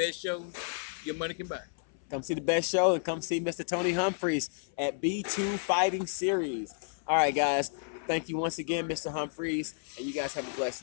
show your money can buy. Come see the best show and come see Mr. Tony Humphries at B2 Fighting Series. All right, guys. Thank you once again, Mr. Humphries, and you guys have a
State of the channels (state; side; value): silent; right; 57 dB below the other